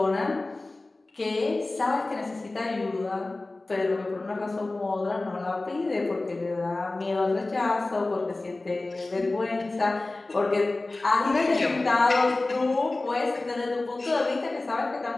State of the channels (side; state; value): right; quieter; 3.1 dB